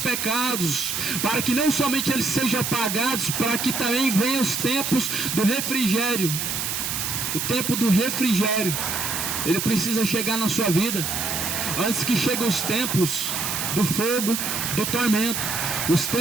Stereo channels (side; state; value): right; noise; hiss, 2 dB below the sound